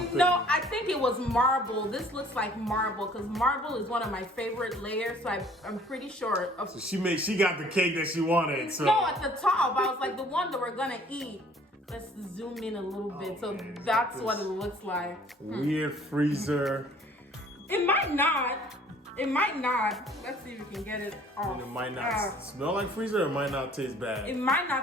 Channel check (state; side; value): normal; both; correlation 0.55